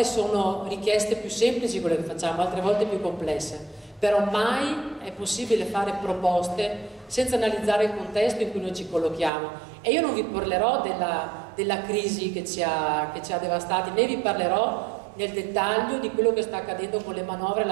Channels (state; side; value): drops out; left; at 9.3 s